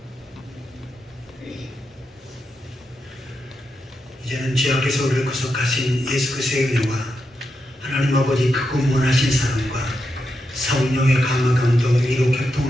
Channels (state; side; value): normal; both; correlation 0.85